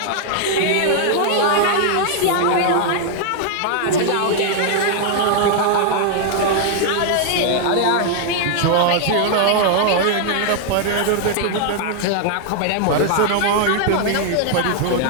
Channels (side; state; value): both; different; correlation 0.00